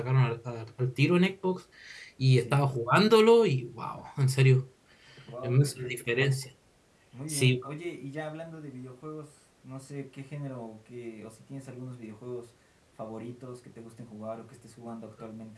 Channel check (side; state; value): both; identical; correlation 1.00